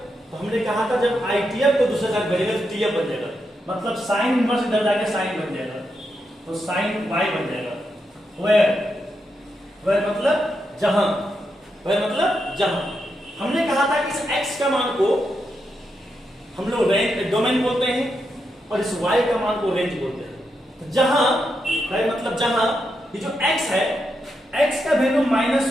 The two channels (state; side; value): normal; both; correlation 0.84